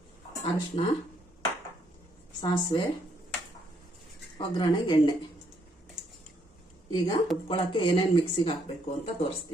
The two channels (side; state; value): both; normal; correlation 0.72